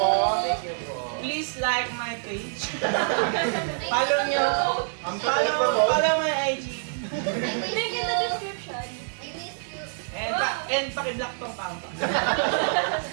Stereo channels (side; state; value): left; silent; 61 dB below the other